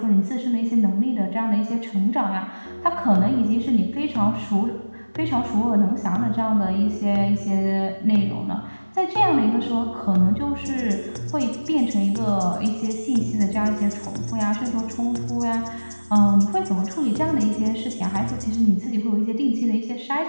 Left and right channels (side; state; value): both; inverted; correlation -1.00